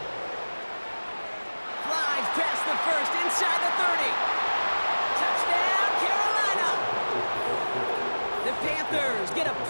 Flies past the first, inside the 30. Touchdown, Carolina! The Panthers get a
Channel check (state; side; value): inverted; both; correlation -1.00